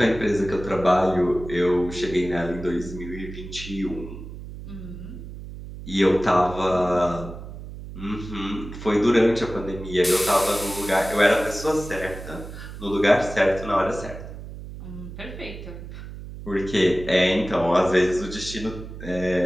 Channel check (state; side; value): noise; right; hum, 12 dB below the sound